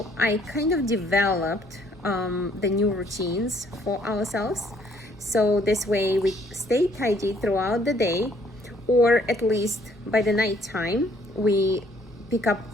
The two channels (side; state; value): both; normal; correlation 0.64